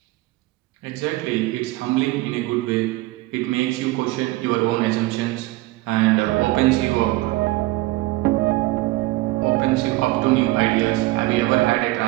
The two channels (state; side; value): quieter; left; 19.3 dB